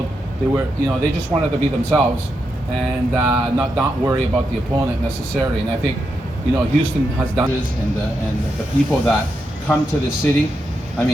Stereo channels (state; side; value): normal; both; correlation 0.84